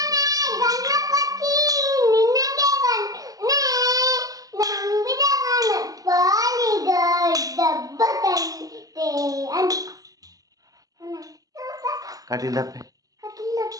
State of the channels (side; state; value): left; late; 0.17 ms